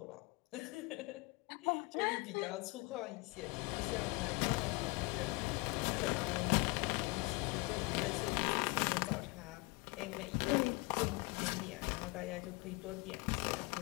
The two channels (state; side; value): quieter; right; 25.7 dB